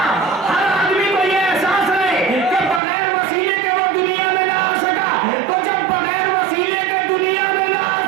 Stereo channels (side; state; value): left; drops out; at 2.8 s